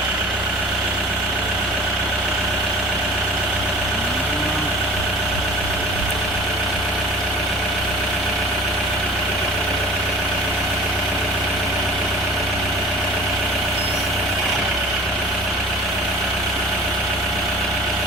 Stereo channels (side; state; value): both; normal; correlation 0.44